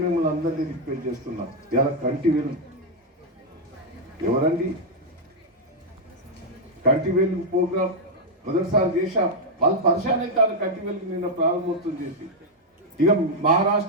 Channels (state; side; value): normal; both; correlation -0.01